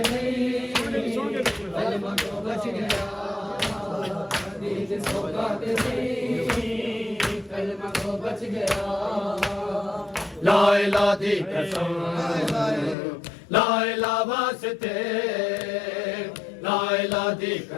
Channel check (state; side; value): drops out; right; at 13.0 s